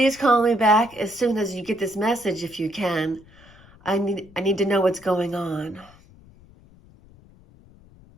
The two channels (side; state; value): left; noise; rumble, 25 dB below the sound